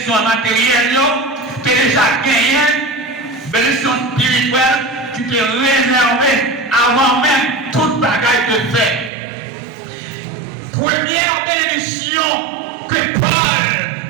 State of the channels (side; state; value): left; drops out; at 9.1 s